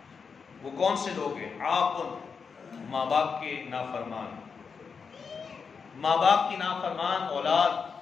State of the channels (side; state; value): right; quieter; 5.6 dB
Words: وہ کون سے لوگ ہیں؟ عاقٌ، ماں باپ کے نافرمان، ماں باپ کی نافرمان اولاد،